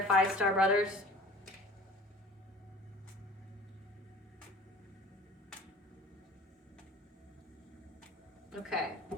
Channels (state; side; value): normal; both; correlation 0.44